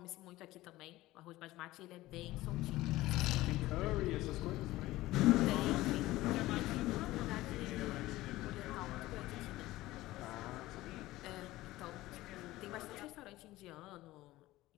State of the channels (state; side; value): quieter; right; 17.4 dB